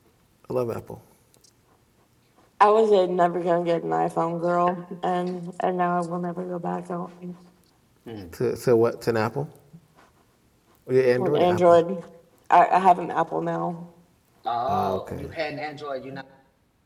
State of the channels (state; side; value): identical; both; correlation 1.00